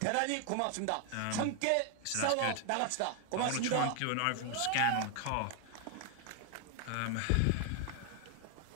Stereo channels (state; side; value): different; both; correlation 0.00